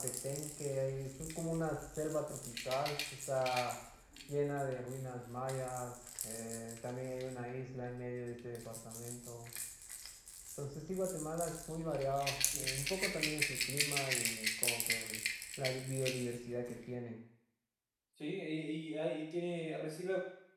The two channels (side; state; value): both; identical; correlation 1.00